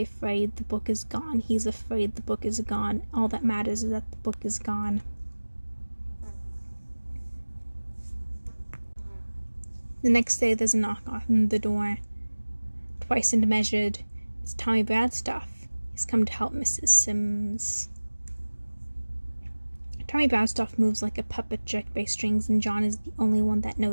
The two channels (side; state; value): both; inverted; correlation -1.00